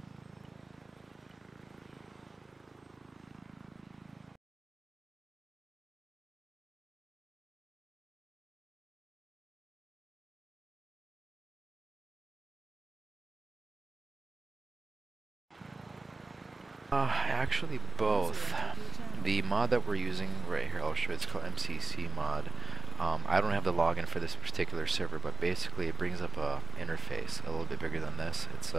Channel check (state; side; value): quieter; left; 3.2 dB